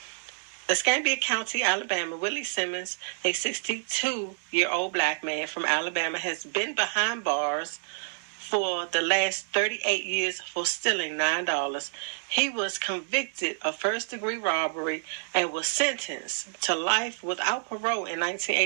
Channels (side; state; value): left; silent; digital silence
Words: Escambia County, Alabama, Willie Simmons, a 62-year-old black man from Alabama, has been behind bars for the last 38 years for stealing $9. He was convicted of first-degree robbery and was sentenced to life without parole in